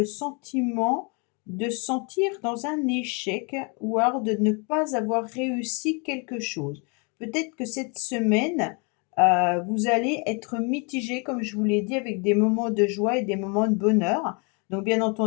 sentiment de sentir dans un échec ou alors de ne pas avoir réussi quelque chose. Peut-être que cette semaine, vous allez être mitigé, comme je vous l'ai dit, avec des moments de joie et des moments de bonheur. Donc bien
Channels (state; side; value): quieter; right; 33.7 dB